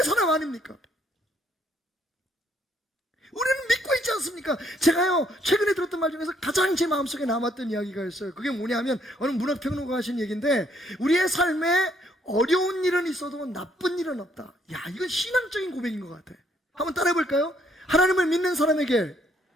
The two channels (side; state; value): both; normal; correlation 0.69